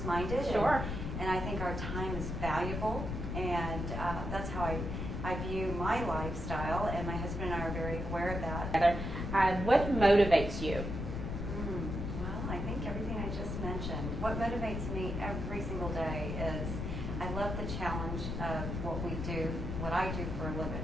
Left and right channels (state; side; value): noise; left; rumble, 4 dB below the sound